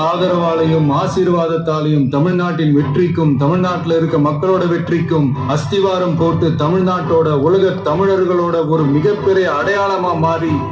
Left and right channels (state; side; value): identical; both; correlation 1.00